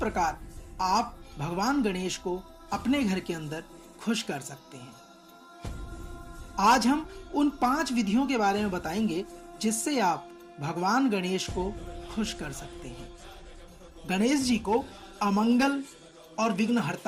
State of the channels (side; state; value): both; identical; correlation 1.00